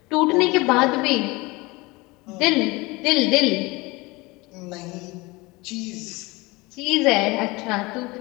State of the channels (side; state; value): right; quieter; 23.4 dB